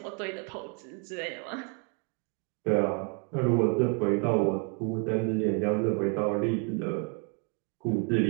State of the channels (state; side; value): quieter; left; 38.2 dB